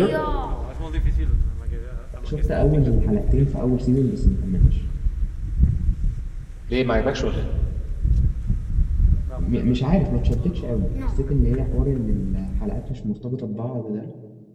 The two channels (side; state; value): both; identical; correlation 1.00